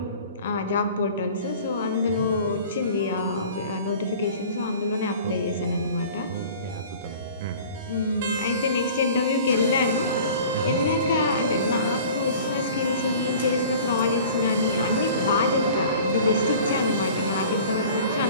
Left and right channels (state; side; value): inverted; both; correlation -0.44